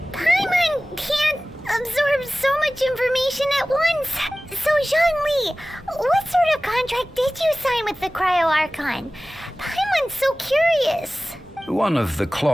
Archon. Paimon's so curious. One of the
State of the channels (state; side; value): normal; both; correlation 0.97